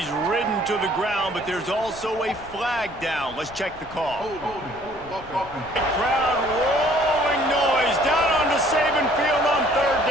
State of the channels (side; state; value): left; noise; rumble, 19 dB below the sound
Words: ridden to the ground, but there's also a flag down. Let's check the call. Crowd rolling noise down onto Saban Field on third